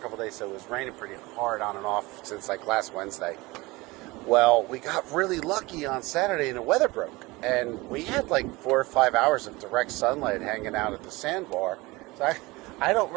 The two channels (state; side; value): quieter; left; 22.3 dB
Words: days. So it was raining pretty hard on and off since like last Wednesday. Well, we got really lucky on Saturday and the weather broke, and we had like 4 or 5 hours of direct sunlight hanging out at the sandbar. So I don't